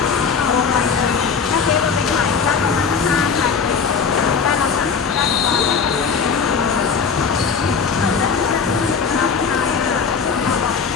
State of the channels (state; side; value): quieter; right; 5.8 dB